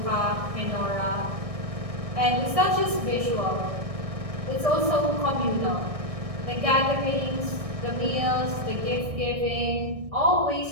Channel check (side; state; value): left; late; 1.6 ms